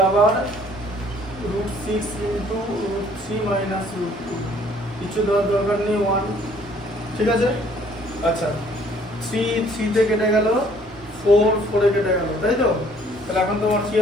আবার √6 ইনটু √3 মাইনাস √2 কিছু দেওয়ার দরকার নেই 1 ঠিক আছে আচ্ছা 3 3 তে কেটে গেল 4 4 এ কেটে গেল তাই তো তাহলে এখন তোমার কি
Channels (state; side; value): normal; both; correlation 0.59